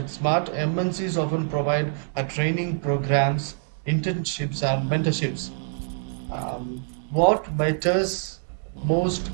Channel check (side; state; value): left; silent; digital silence